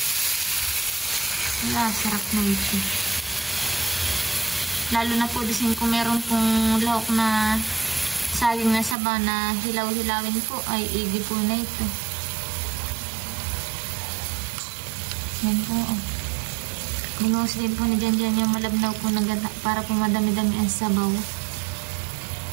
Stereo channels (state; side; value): drops out; left; at 9.0 s